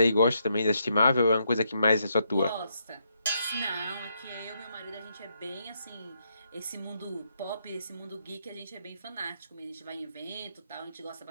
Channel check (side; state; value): both; inverted; correlation -0.77